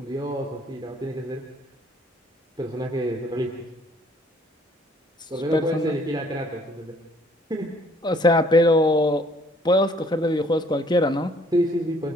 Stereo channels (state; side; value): normal; both; correlation 0.61